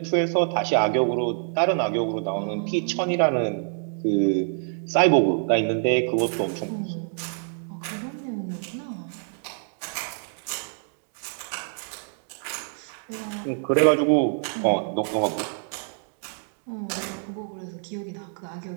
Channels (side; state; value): left; silent; digital silence